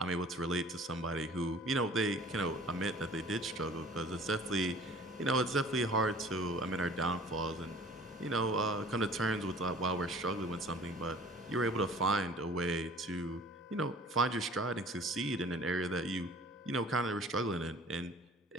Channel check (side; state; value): both; normal; correlation 0.48